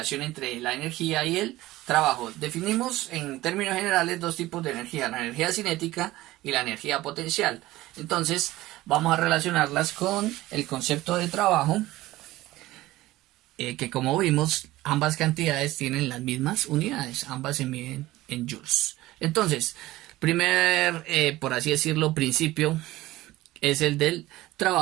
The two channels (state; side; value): quieter; left; 17.3 dB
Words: entre la energía y el trabajo. Definimos en términos generales dos tipos de energía, la energía cinética y la energía potencial. Entonces, vamos a relacionarlas con el concepto de trabajo, que como vimos, ambas cantidades tienen las mismas unidades, ambas se miden en joules. Entonces, primer, por así decirlo, principio es el del